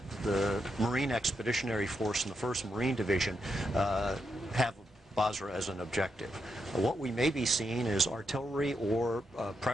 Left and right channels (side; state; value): both; normal; correlation 0.83